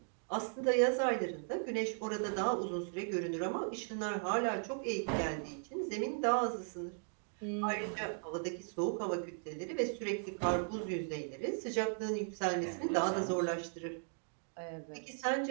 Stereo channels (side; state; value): left; silent; 53 dB below the other